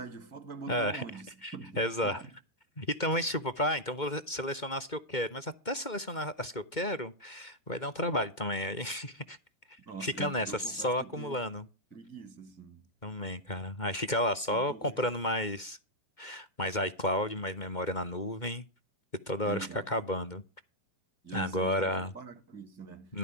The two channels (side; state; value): right; late; 2.2 ms